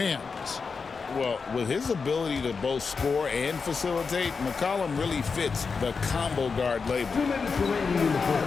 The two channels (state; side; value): quieter; right; 5.1 dB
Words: Well, with his ability to both score and facilitate, McCollum really fits the combo guard label. 2 minutes remaining in the